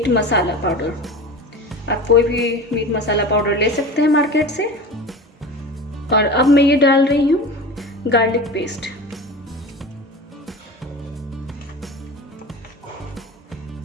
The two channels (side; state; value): both; normal; correlation 0.32